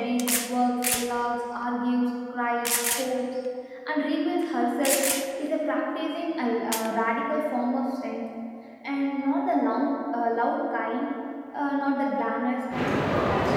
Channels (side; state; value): both; identical; correlation 1.00